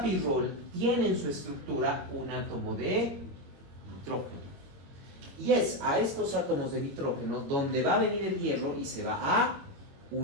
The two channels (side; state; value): left; late; 22 ms